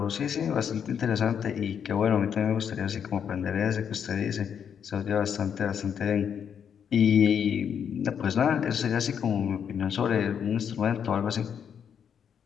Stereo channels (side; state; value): right; quieter; 7.9 dB